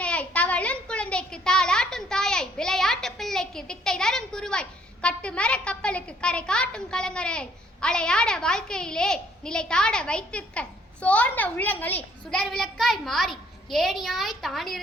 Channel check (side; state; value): both; normal; correlation 0.64